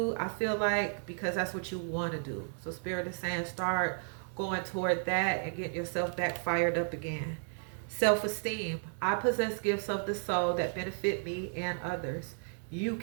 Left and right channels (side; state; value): left; silent; 55 dB below the other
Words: I feel like, because that's what you want to do. So Spirit is saying start going toward that and get yourself back fired up again. Self-esteem. I possess gifts of the soul that benefit me and others. You